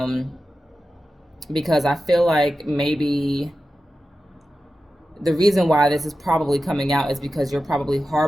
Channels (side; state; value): both; normal; correlation 0.93